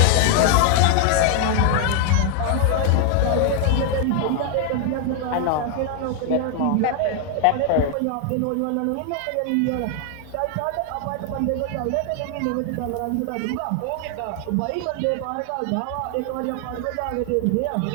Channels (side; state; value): both; different; correlation 0.00